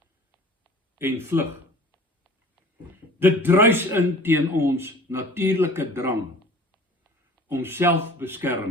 en vlug. Dit druis in teen ons natuurlike drang om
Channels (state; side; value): normal; both; correlation 0.45